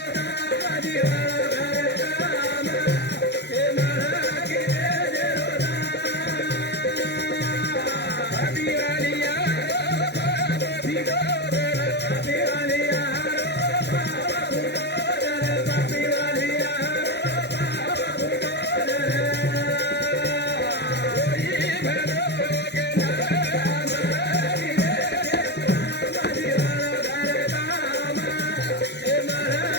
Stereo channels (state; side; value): late; right; 0.49 ms